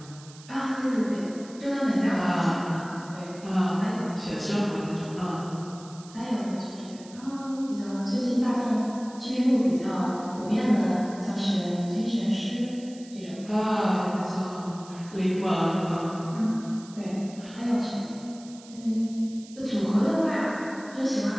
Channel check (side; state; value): right; noise; hiss, 20 dB below the sound